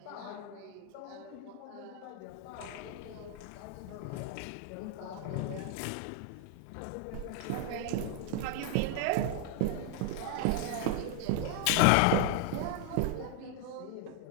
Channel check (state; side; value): different; both; correlation 0.00